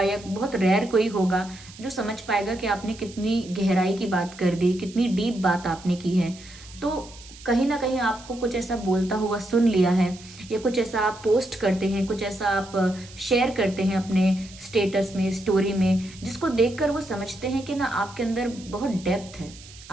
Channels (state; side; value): noise; right; hiss, 19 dB below the sound